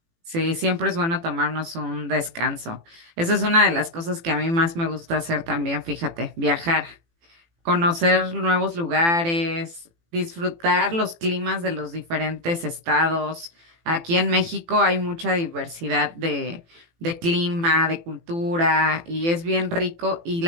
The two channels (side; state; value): left; late; 18 ms